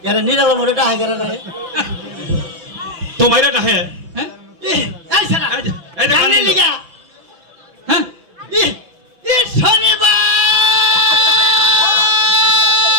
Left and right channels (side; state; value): left; late; 6.0 ms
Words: यार निराला मोरे टा हागरा रे তোমার এটা হে হ্যাঁ এই সারা এই যে গানে লিগা হ্যাঁ ই শনিবার